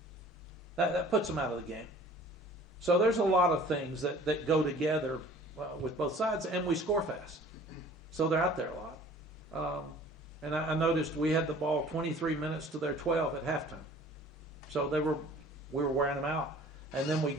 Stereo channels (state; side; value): normal; both; correlation 0.50